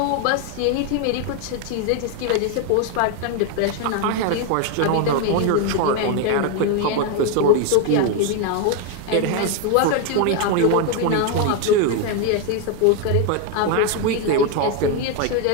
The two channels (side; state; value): both; different; correlation 0.01